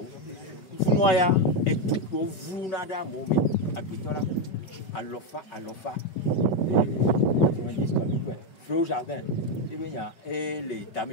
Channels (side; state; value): right; late; 5.2 ms